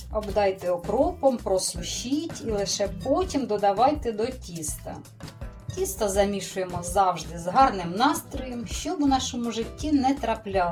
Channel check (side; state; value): both; identical; correlation 1.00